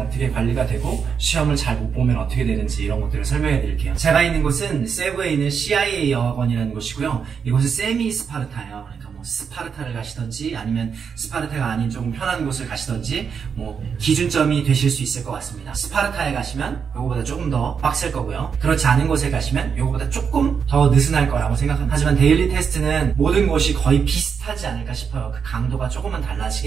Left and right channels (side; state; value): left; quieter; 6.5 dB